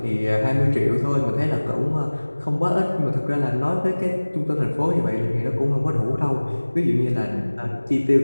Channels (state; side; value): inverted; both; correlation -1.00